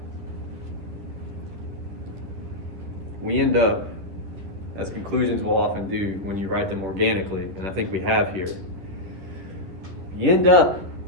We end up, as conclusions will often do when you write them organically, and I think we have here, you end up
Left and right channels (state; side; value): late; left; 10 ms